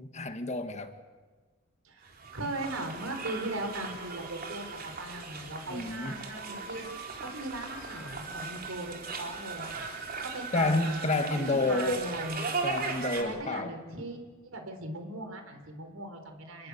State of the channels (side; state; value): both; normal; correlation 0.14